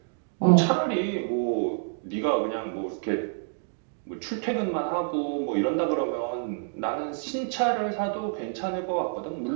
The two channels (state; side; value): silent; left; digital silence